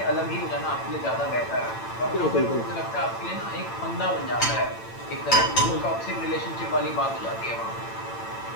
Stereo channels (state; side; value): late; right; 8.9 ms